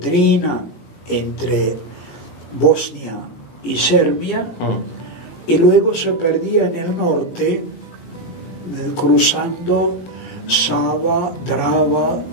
entre Bosnia y Serbia, y luego se perdía en el norte, cruzando Sava, Drava,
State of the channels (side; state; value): right; late; 18 ms